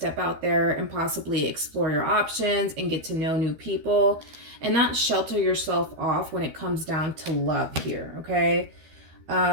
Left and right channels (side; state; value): left; late; 13 ms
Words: out there and possibly explore your options and get to know new people and not shelter yourself off when it comes down to love here, okay?